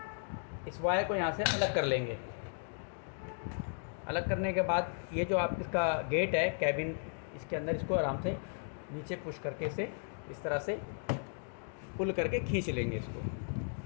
इस वायर को यहाँ से अलग कर लेंगे। अलग करने के बाद ये जो आप इसका गेट है कैबिन, इसके अंदर इसको आराम से नीचे पुश करके इसे इस तरह से पुल करके खींच लेंगे। इसको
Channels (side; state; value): right; silent; digital silence